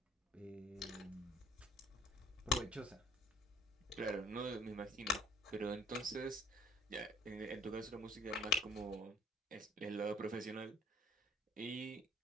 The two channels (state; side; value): normal; both; correlation 0.54